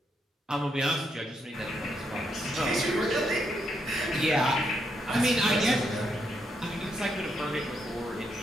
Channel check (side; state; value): both; normal; correlation 0.79